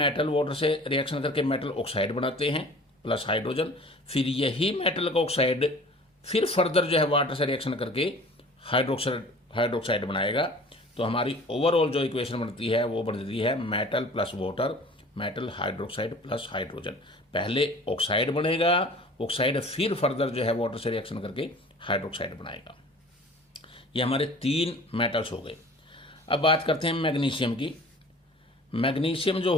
वाटर से रिएक्शन करके मेटल ऑक्साइड बनाते हैं प्लस हाइड्रोजन, फिर यही मेटल का ऑक्साइड फिर फर्दर जो है वाटर से रिएक्शन करके हाइड्रोक्साइड बनाएगा। तो हमारी ओवरऑल जो इक्वेशन बनती है वो बनती है metal plus water, metal hydroxide plus hydrogen. पहले ऑक्साइड बनेगा, ऑक्साइड फिर फर्दर जो है वाटर से रिएक्शन करके हाइड्रोक्साइड बनाएगा। ये हमारे 3 मेटल्स हो गए। अब बात करते हैं मैग्नीशियम की। मैग्नीशियम जो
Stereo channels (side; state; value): both; normal; correlation 0.46